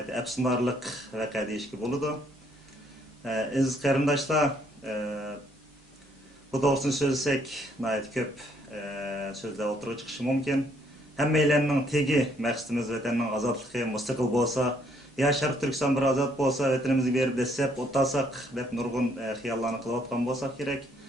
əfsunarlıq vəqə deyişki boludu. Aziz qarindoshlar, bu doğrusunu söylesek nəhayət köp sözler oturuğa çıkışı mümkün. Həmmeylərinin tegi məqsədimiz vətəninin azadlığı müstəqil bolsa, ya Şərq Türkistan bir azad bolsa, vətənimizi berib desep, otasaq, dep nurgun xiyallarını qılıb atqan bolsaq gerek.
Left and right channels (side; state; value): both; normal; correlation 0.68